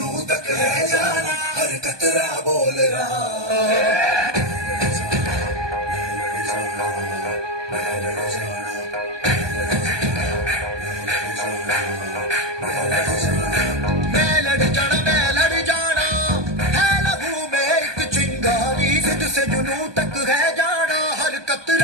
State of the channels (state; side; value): late; left; 1.2 ms